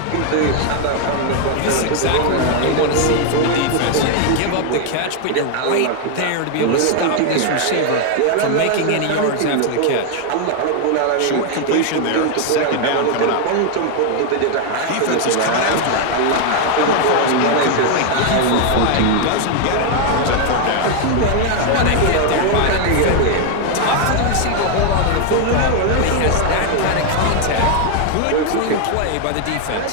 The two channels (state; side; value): different; both; correlation 0.00